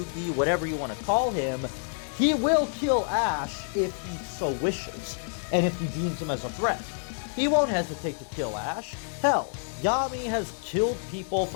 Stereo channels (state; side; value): silent; right; digital silence